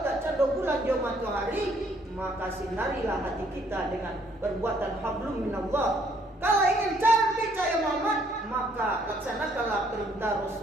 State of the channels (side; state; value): both; normal; correlation 0.65